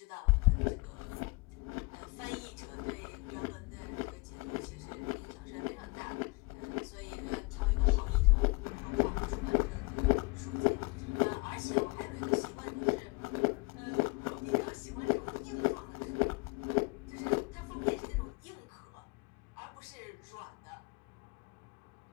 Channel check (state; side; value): quieter; right; 25.8 dB